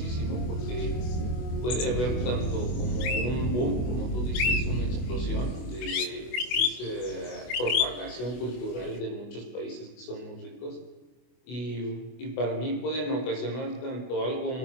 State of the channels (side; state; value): right; late; 24 ms